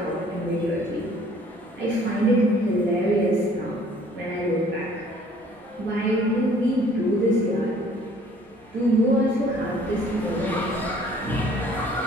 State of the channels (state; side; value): normal; both; correlation 0.56